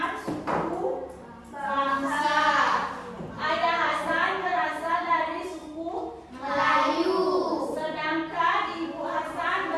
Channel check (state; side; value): identical; both; correlation 1.00